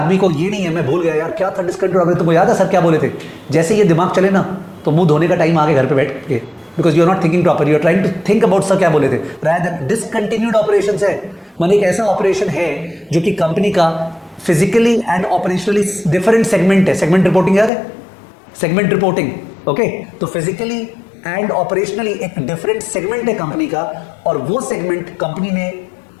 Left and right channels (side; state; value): right; drops out; at 17.7 s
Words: को ये नहीं है, मैं भूल गया यार क्या था डिसकंटिन्यूड ऑपरेशन, तुमको याद है सर क्या बोले थे? जैसे ये दिमाग चले ना तो मुंह धोने का टाइम आगे घर पे बैठ के, because you are not thinking proper, you are trying to think about sir क्या बोले थे। रादर डिसकंटिन्यूड ऑपरेशंस है, माने एक ऐसा ऑपरेशन है जो कि कंपनी का physically and operationally different segment है। सेगमेंट रिपोर्टिंग याद है? Segment reporting, okay. तो फिजिकली एंड ऑपरेशनली एक डिफरेंट सेगमेंट है कंपनी का, और वो सेगमेंट कंपनी ने